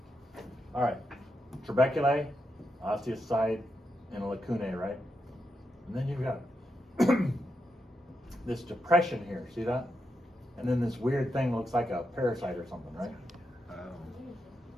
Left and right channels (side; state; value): both; normal; correlation 0.84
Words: All right, trabeculae, osteocyte, and lacunae, right? And then you've got this depression here, see that? And then this weird thing looks like a parasite or something, right? Oh.